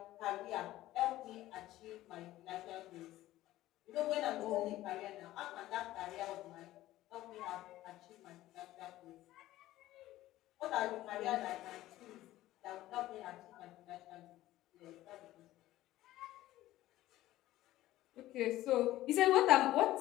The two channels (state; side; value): quieter; right; 15.4 dB